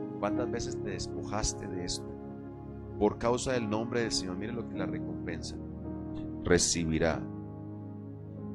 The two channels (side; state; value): both; identical; correlation 1.00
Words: ¿Cuántas veces te despojaste de esto? Por causa del nombre del Señor, mire lo que la recompensa. Recibirá